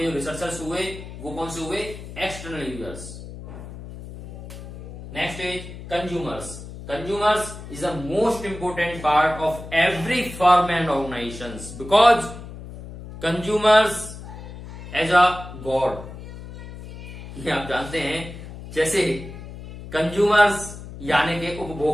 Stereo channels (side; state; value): left; noise; hum, 13 dB below the sound